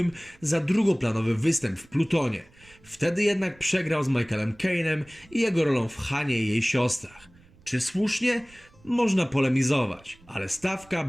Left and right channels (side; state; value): right; noise; rumble, 27 dB below the sound